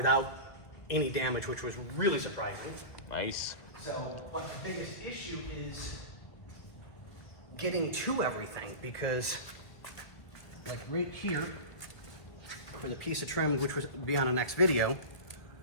any damage, which was really surprising. Nice. So, but the biggest issue is getting to everything, because like right here, for the piece of trim, which will be on the next video,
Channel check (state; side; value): late; right; 1.8 ms